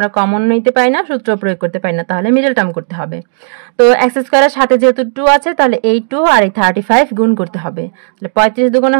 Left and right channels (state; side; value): silent; left; digital silence